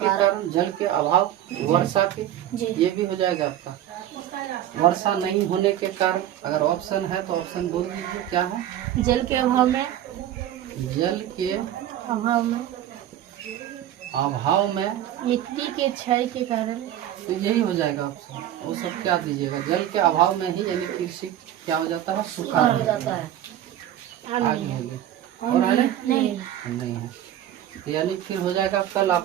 जल के अभाव, वर्षा के, ये भी हो जाएगा आपका। वर्षा नहीं होने के कारण, अगर ऑप्शन है तो ऑप्शन बोल दीजिए क्या है? जल के अभाव में, अभाव में मिट्टी के क्षय के कारण, तो यही हो जाएगा ऑप्शन। वो सब क्या दीजिएगा? जल के अभाव में ही यानी कृषि क्या हो जाता है? सूखा हो जाता है। आगे होगी और है नहीं है, यानी फिर हो जाएगा कल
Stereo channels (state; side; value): quieter; left; 11.8 dB